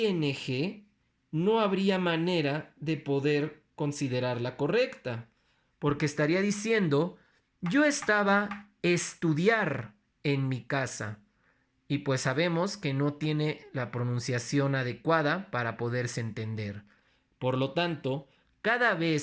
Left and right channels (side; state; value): both; identical; correlation 1.00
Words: no habría manera de poder considerarla correcta, porque estaría diciendo, yo estaba estudiar en mi casa. Y pues sabemos que no tiene la pronunciación adecuada para poderse entender. Por lo tanto, cada